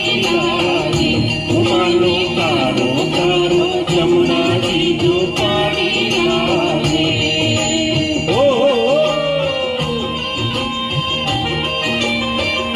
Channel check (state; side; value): identical; both; correlation 1.00